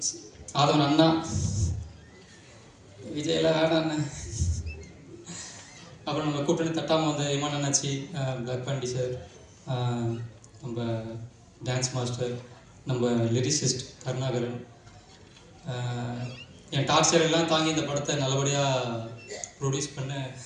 அண்ணா, விஜயெல்லாம் வேணாண்ணே, அப்புறம் நம்ம கூட்டணி தட்டாமல் இமான் அண்ணாச்சி, பிளாக் பாண்டி சார், நம்ம டான்ஸ் மாஸ்டர், நம்ம லிரிசிஸ்ட் கருணாகரன், என் டார்ச்சர் எல்லாம் தாங்கி இந்த படத்தை நல்லபடியாக ப்ரொடியூஸ் பண்ண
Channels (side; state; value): both; identical; correlation 1.00